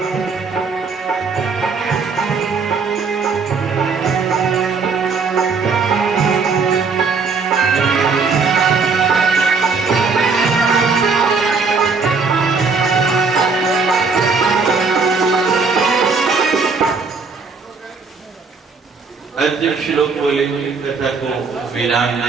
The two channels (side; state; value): left; quieter; 4.8 dB